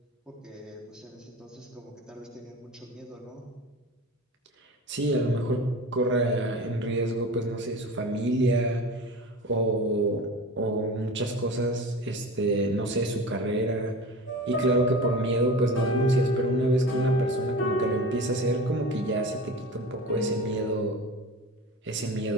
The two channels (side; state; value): both; normal; correlation 0.33